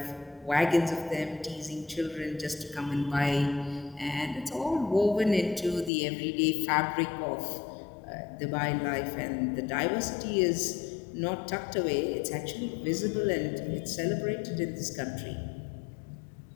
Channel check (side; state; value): right; drops out; at 5.9 s